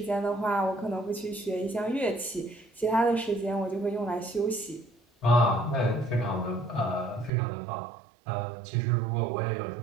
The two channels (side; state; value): left; drops out; at 7.3 s